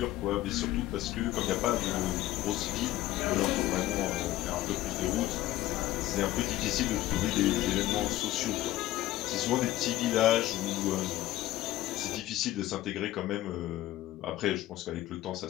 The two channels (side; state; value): right; quieter; 15.3 dB